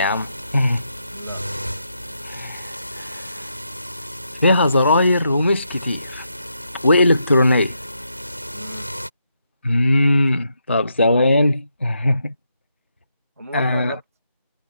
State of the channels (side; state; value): both; inverted; correlation -0.81